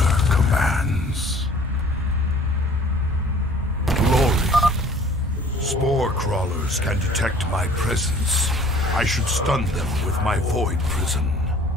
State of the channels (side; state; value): both; normal; correlation 0.52